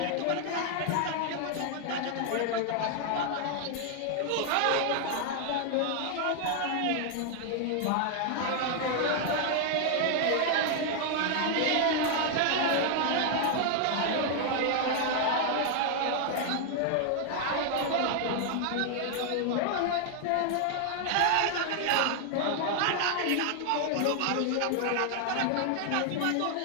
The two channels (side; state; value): both; different; correlation 0.00